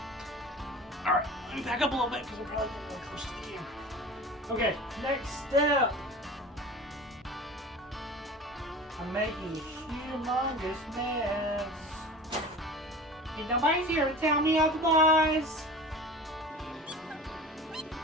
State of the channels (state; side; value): normal; both; correlation 0.37